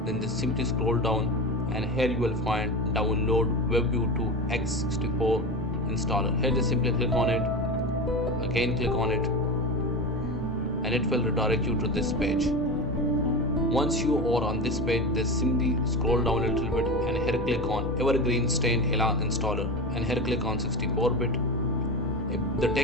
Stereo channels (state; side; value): normal; both; correlation 0.24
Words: then just simply scroll down and here you will find download Webview2 x64 installer. Here just simply click on it. Again click on it and it will redirect you to this page. Once you are on this page, just simply scroll down a little bit and here click on Evergreen Stain Hela installer and here click on 64-bit. If the